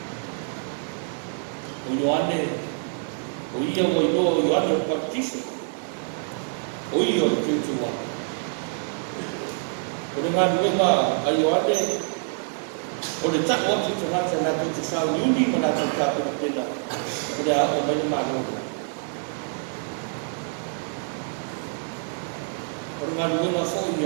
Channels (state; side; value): silent; left; 61 dB below the other